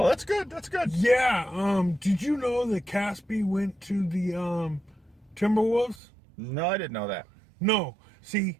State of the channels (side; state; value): left; drops out; at 6.0 s